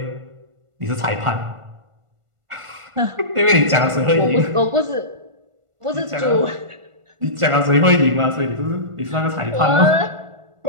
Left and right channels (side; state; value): left; late; 1.5 ms